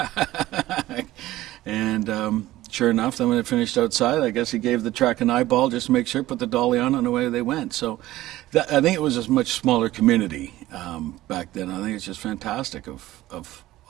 And sure enough, then when it finished outside, I guess he gave the track an eyeball just to make sure, put the dolly on, and away they went. So I think it was a much smaller community back then. I think it's just fantastic of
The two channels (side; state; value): left; quieter; 16.1 dB